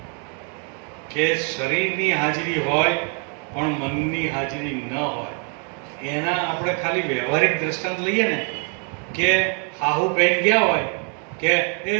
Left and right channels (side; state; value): left; quieter; 39.5 dB